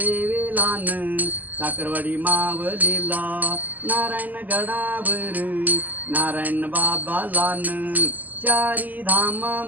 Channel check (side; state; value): left; late; 0.082 ms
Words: साखरवाडी मावलीला नारायण गडावर नारायण बाबालान चारी